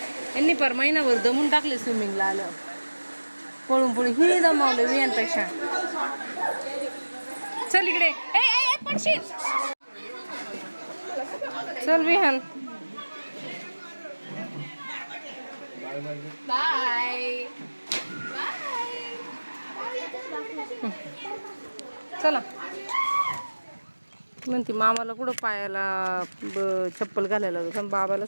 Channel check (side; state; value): both; inverted; correlation -1.00